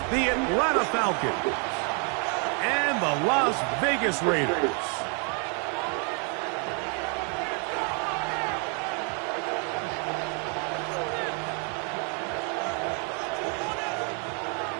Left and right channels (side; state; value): left; quieter; 38.1 dB